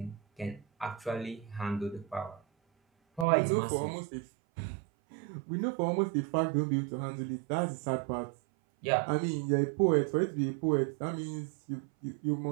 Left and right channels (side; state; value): left; drops out; at 3.2 s